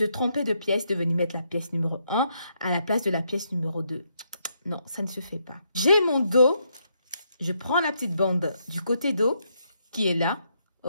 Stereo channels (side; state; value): both; inverted; correlation -0.77